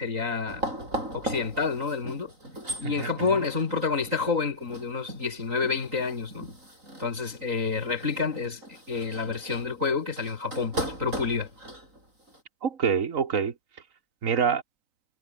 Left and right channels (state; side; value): late; left; 3.9 ms